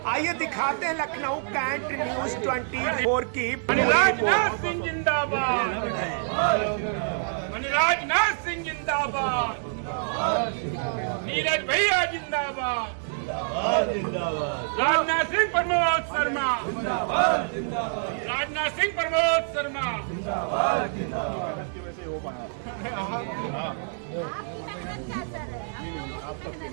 आइए दिखाते हैं लखनऊ कैंट न्यूज 24 की राजनाथ सिंह जिंदाबाद, राजनाथ सिंह जिंदाबाद, नीरज भैया जिंदाबाद, राजनाथ सिंह प्रमोद शर्मा, राजनाथ सिंह प्रमोद शर्मा।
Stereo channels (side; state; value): left; silent; digital silence